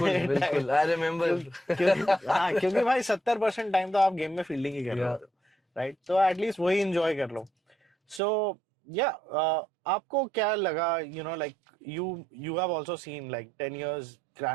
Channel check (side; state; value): left; drops out; at 8.2 s